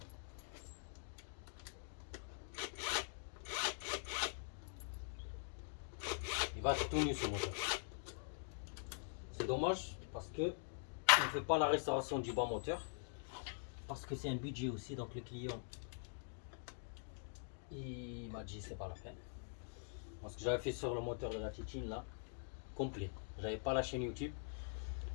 va être tout nu ce moteur. C'est dommage parce que on ne fait pas la restauration du bas moteur. Parce que c'est un budget aussi, donc le client il m'a dit c'est pas la peine. Parce que j'avais fait sur le moteur de la Titine là, complet. J'avais pas la chaîne YouTube.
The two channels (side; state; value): right; silent; digital silence